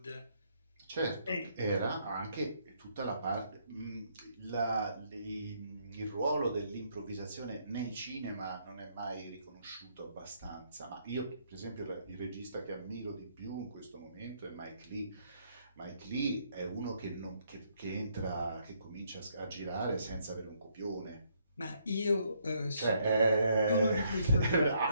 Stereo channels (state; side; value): inverted; both; correlation -0.71